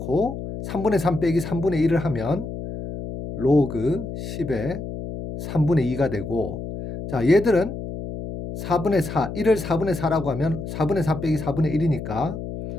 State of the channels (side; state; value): left; noise; hum, 8 dB below the sound